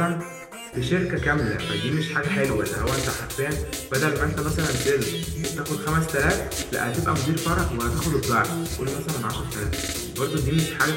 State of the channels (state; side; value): identical; both; correlation 1.00